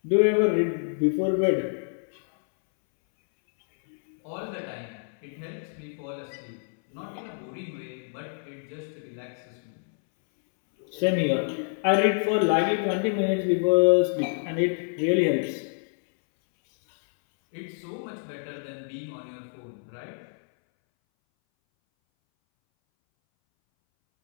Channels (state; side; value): silent; right; 60 dB below the other